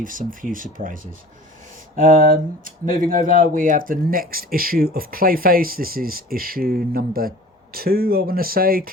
some few surprises. Moving over, we have the next issue of Clayface. This is issue number 2, I want to say.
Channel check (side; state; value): both; normal; correlation 0.43